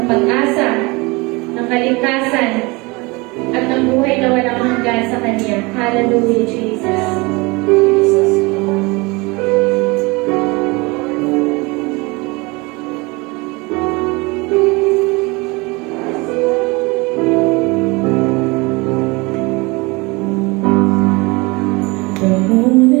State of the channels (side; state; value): left; quieter; 25.5 dB